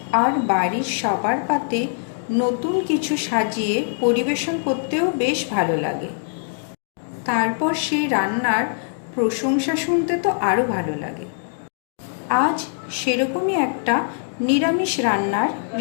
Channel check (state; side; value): silent; right; digital silence